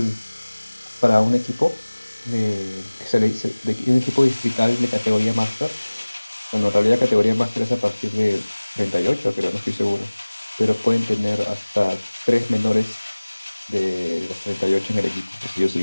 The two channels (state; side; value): inverted; both; correlation -1.00